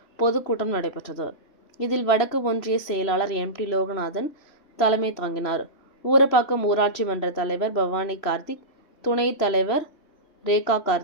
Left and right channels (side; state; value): right; late; 3.0 ms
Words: பொதுக்கூட்டம் நடைபெற்றது. இதில் வடக்கு ஒன்றிய செயலாளர் எம்.டி. லோகநாதன் தலைமை தாங்கினார். ஊரப்பாக்கம் ஊராட்சி மன்ற தலைவர் பவானி கார்த்திக், துணைத் தலைவர் ரேகா